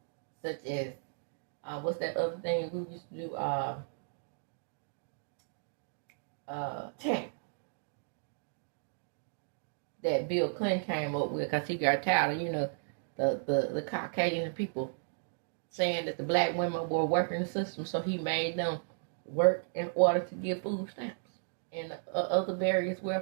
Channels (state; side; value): silent; left; digital silence